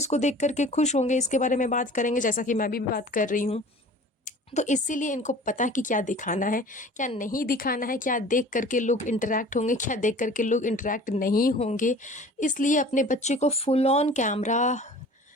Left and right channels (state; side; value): normal; both; correlation 0.45